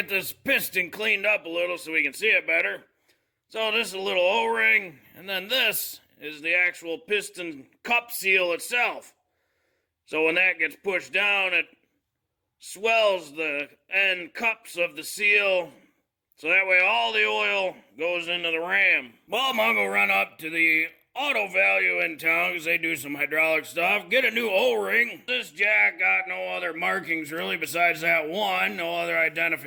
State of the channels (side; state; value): both; identical; correlation 1.00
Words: this piston cleaned up a little so we can see it better. So this is a little O-ring, and then this is the actual piston cup seal itself. So when that gets pushed down, it swells the end cups of the seal, so that way all the oil goes into the ram. Well, Mongo run up to the auto value in town because they do some hydraulic stuff. Get a new O-ring. This jack got no other markings really besides that one. No other